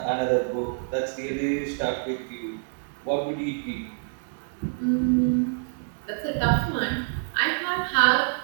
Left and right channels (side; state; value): left; silent; digital silence